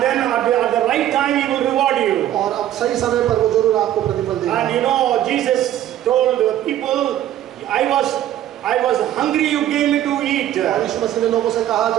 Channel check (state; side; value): quieter; left; 12.3 dB